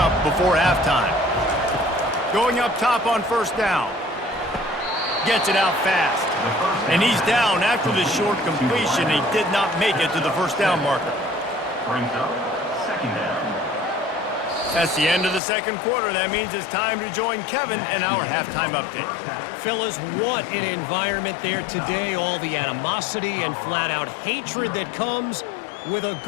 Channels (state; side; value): drops out; right; at 15.4 s